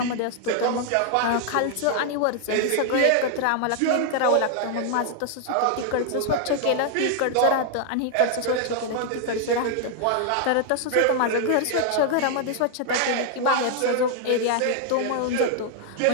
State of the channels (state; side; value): different; both; correlation 0.00